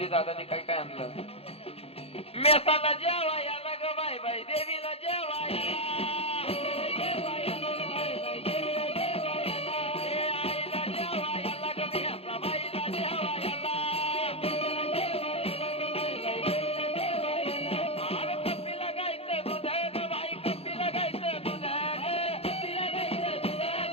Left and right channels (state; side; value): late; right; 0.29 ms